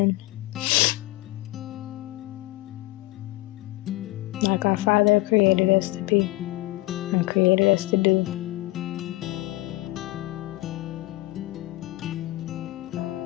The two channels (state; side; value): quieter; right; 19.9 dB